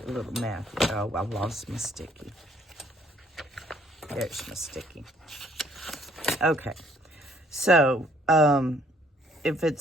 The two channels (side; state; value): both; normal; correlation 0.62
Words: A little math. Oh, I lost my sticky. There's my sticky. Okay, so if